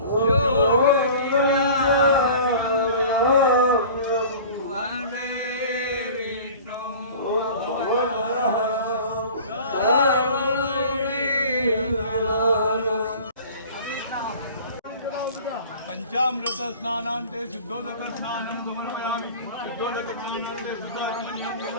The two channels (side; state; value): both; inverted; correlation -0.42